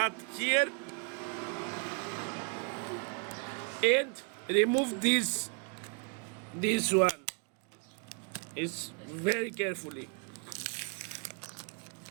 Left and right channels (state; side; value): quieter; left; 34.9 dB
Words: here and remove this one. It's very carefully.